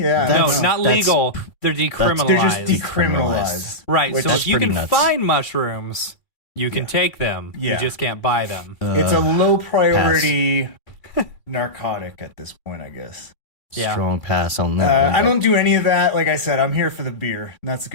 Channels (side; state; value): right; late; 2.8 ms